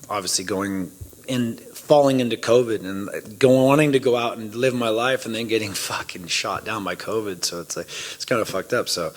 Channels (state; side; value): identical; both; correlation 1.00